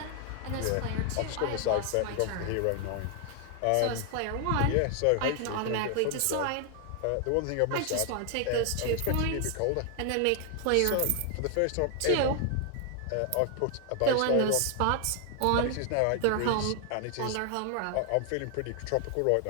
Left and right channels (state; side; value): different; both; correlation 0.00